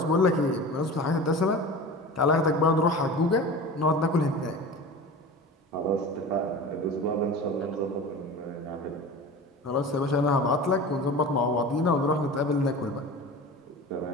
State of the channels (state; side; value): normal; both; correlation 0.34